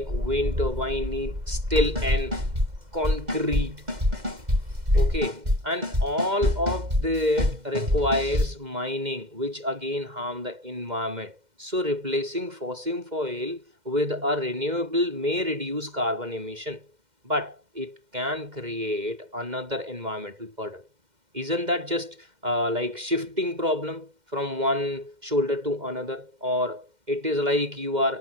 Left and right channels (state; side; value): late; left; 2.1 ms